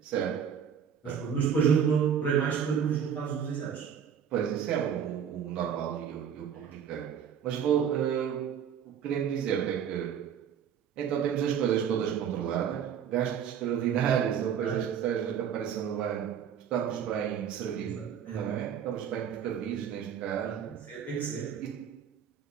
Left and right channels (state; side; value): quieter; left; 8.2 dB